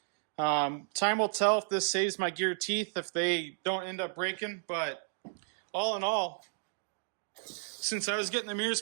Time will tell if this saves my gear teeth, if they don't end up breaking, but all in all, since I was getting the mirrors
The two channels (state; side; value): silent; left; digital silence